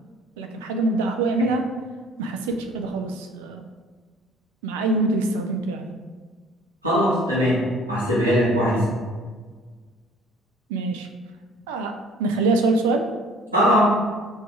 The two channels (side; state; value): both; normal; correlation 0.52